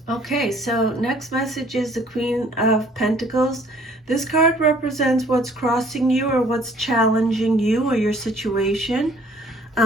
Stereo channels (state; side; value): normal; both; correlation 0.58